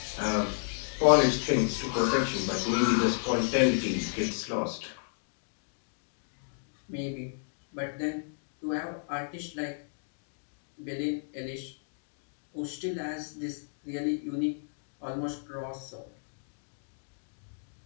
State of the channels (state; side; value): silent; right; digital silence